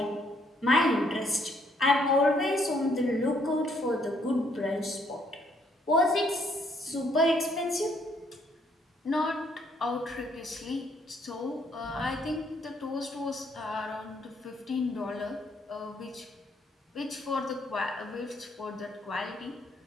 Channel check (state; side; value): normal; both; correlation 0.68